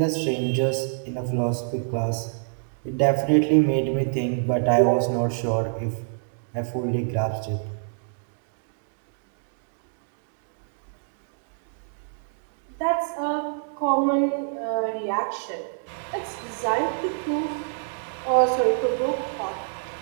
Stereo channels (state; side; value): silent; left; digital silence